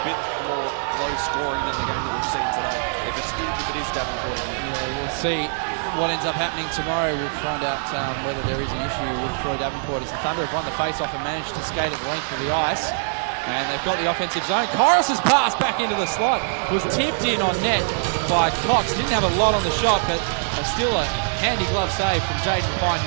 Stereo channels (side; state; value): left; silent; digital silence